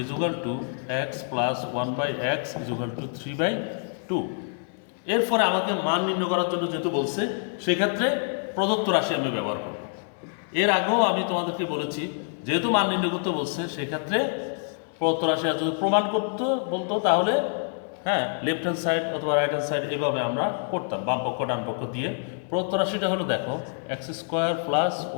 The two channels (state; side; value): silent; right; 61 dB below the other